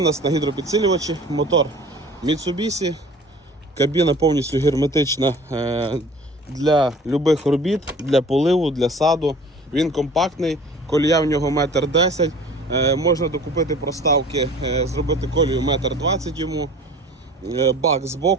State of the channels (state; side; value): normal; both; correlation 0.45